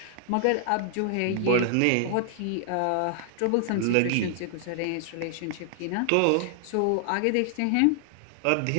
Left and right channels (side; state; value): both; different; correlation 0.00